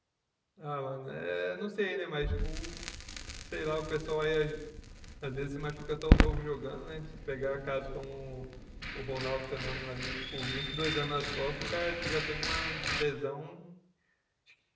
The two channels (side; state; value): both; identical; correlation 1.00